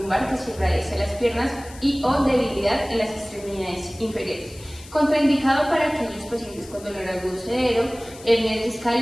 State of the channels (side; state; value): left; noise; hiss, 19 dB below the sound